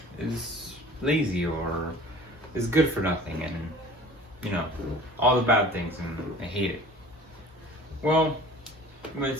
is lazy or is good for nothing and all the bad things, and I hate it. Well, you might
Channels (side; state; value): both; normal; correlation 0.45